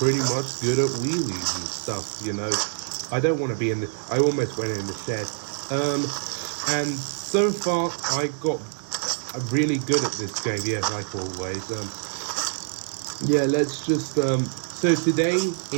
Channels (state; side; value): silent; left; 61 dB below the other